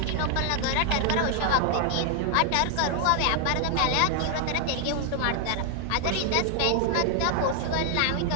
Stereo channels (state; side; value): different; both; correlation 0.00